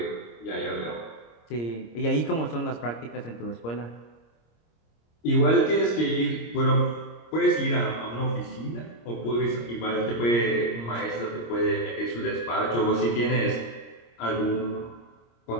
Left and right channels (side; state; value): right; late; 26 ms